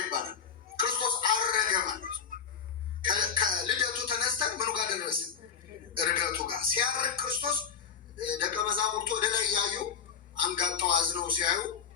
ክርስቶስ አረገ ማለት ከልደቱ ተነስተን ምኑ ጋር ደረስን? እርገቱ ጋር። ሲያርግ ክርስቶስ ደቀ መዛሙርቱ ወደ ላይ እያዩ አንጋጠው አዝነው ሲያዩ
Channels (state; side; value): quieter; right; 7.1 dB